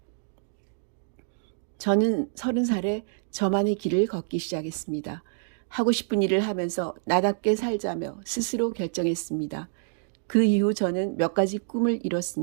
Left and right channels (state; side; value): silent; left; digital silence